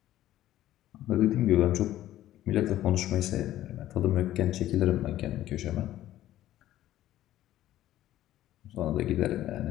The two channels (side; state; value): right; quieter; 13.6 dB